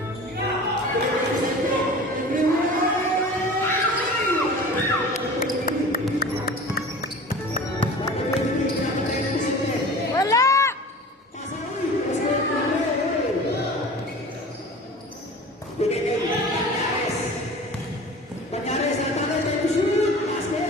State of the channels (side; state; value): both; normal; correlation 0.39